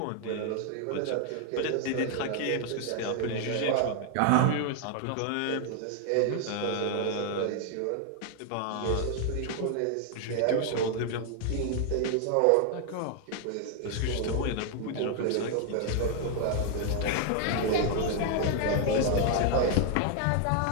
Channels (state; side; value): different; both; correlation 0.00